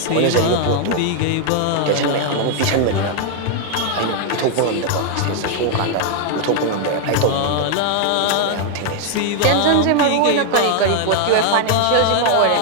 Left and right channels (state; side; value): different; both; correlation 0.00